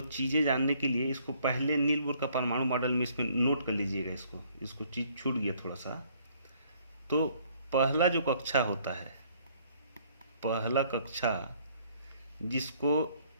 चीज़ें जानने के लिए इसको पहले नील बोर का परमाणु मॉडल में इसमें नोट कर लीजिएगा। इसको चीज़ छूट गया थोड़ा सा। तो पहला जो कक्षा होता है, पहला कक्षा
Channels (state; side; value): inverted; both; correlation -0.63